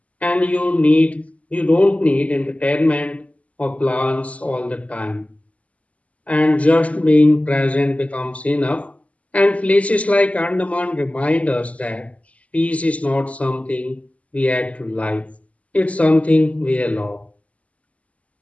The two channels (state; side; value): late; right; 0.068 ms